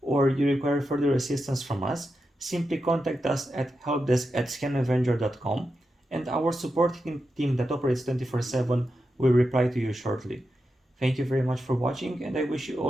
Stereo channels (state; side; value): normal; both; correlation 0.88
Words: you require further assistance from us, simply contact us at helpdesk@scanavenger.com and our support team that operates 24/7 will reply to you shortly. Thank you very much for watching and I wish you